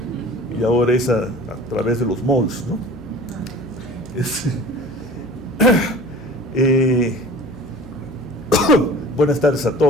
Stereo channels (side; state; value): left; noise; hum, 20 dB below the sound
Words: y ahora es a través de los malls, ¿no? Buenas tardes a